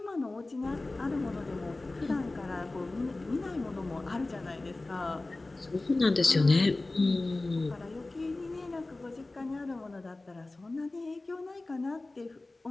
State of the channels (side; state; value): right; quieter; 3.0 dB